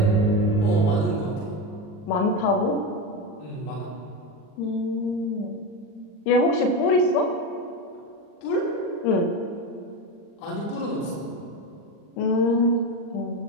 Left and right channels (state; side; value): late; right; 39 ms